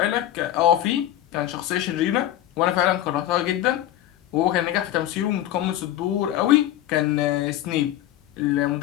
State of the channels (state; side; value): quieter; right; 12.9 dB